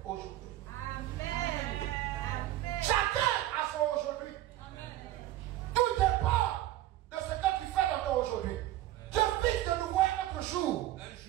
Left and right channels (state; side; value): quieter; left; 14.4 dB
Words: aujourd'hui. Amen. Chacun a son aujourd'hui. Tout dépend de ce que tu fais dans ton aujourd'hui. Dieu fixe de nouveau un autre jour.